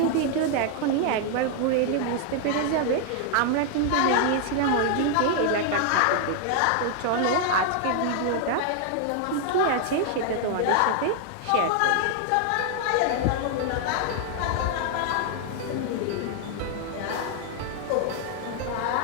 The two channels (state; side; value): different; both; correlation 0.00